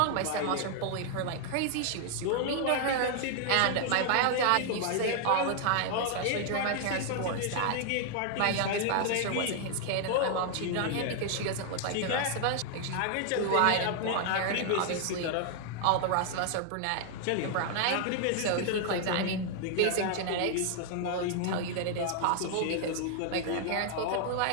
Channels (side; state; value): both; different; correlation 0.00